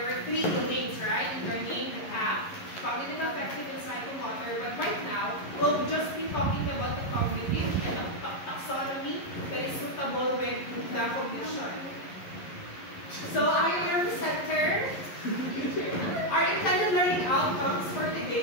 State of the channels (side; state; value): right; late; 11 ms